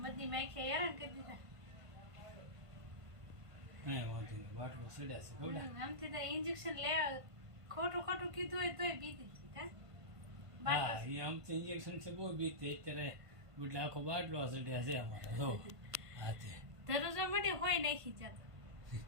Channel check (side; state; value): left; late; 1.5 ms